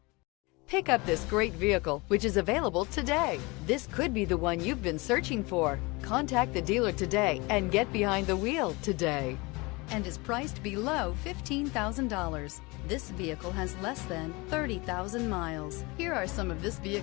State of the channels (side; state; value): right; quieter; 25.4 dB